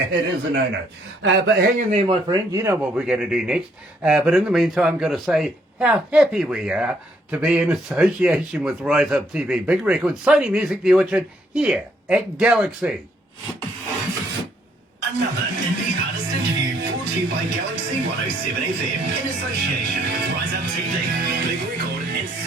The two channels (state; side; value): normal; both; correlation 0.69